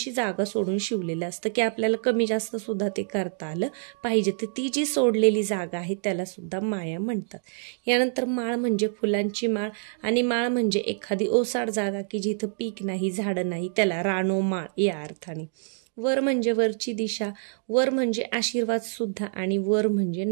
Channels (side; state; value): left; silent; 61 dB below the other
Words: जागा सोडून शिवलेलं असतं की आपल्याला कमी जास्त सुद्धा ते करता आलं पाहिजे. तर ती जी सोडलेली जागा आहे त्याला सुद्धा माया म्हणतात. यानंतर माळ म्हणजे फुलांची माळ आणि माळ म्हणजे एखादी ओसाड जागा की जिथं पीक नाही, झाडं नाही, त्याला रानोमाळ या अर्थाने. वर म्हणजे वरची दिशा, वर म्हणजे आशीर्वाद सुद्धा आणि वर म्हणजे